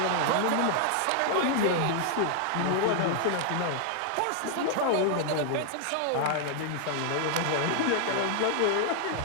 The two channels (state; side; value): different; both; correlation 0.00